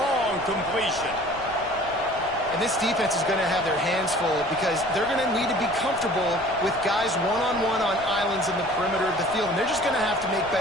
completion. And this defense is going to have their hands full because they're going to need to be comfortable with guys one-on-one on islands in the perimeter of the field. And they're just going to have to make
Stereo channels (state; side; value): noise; left; rumble, 19 dB below the sound